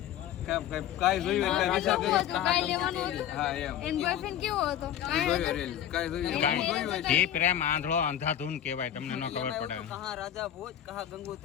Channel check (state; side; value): quieter; right; 10.7 dB